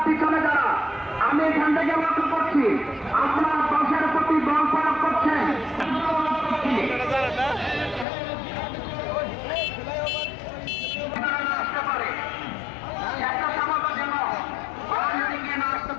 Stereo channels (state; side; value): drops out; right; at 8.1 s